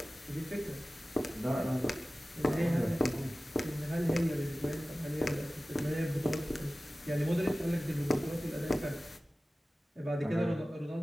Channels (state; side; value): normal; both; correlation 0.96